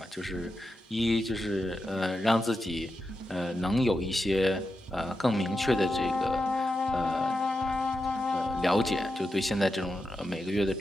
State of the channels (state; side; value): normal; both; correlation 0.88